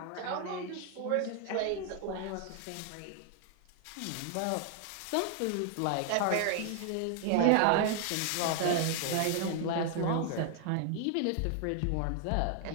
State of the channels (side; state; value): both; different; correlation 0.00